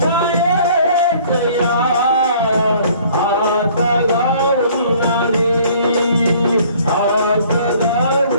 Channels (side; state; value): both; inverted; correlation -0.56